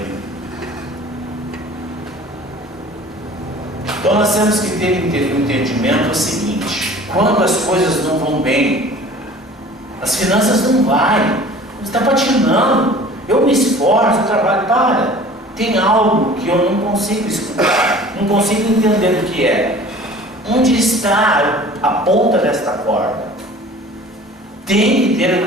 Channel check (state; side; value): normal; both; correlation 0.46